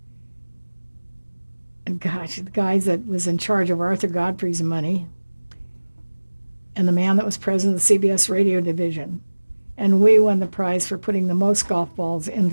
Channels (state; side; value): inverted; both; correlation -1.00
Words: and gosh, the guy that was in charge of Arthur Godfrey's money, and the man that was president of the CBS radio division. And we won the prize for putting the most golf balls